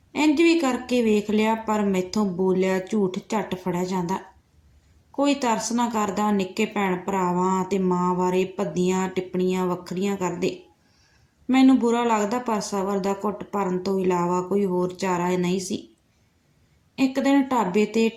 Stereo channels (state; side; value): identical; both; correlation 1.00